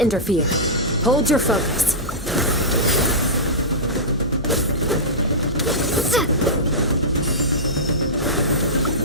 interfere. Hold your focus.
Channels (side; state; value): both; normal; correlation -0.14